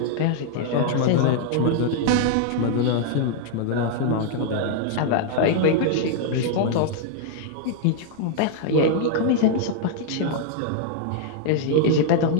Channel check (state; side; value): different; both; correlation 0.00